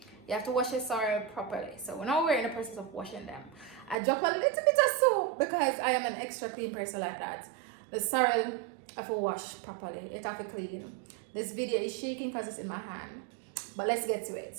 You have to wash your sorrel properly. So now we're in the process of washing them. I drop a little bit of soap because I am an extra clean person like that. The sorrel I have to wash properly. It have to clean. This video is shaking because it's in my hand. But let's get to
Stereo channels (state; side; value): drops out; left; at 4.0 s